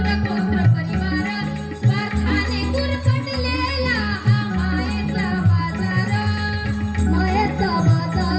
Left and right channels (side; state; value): both; identical; correlation 1.00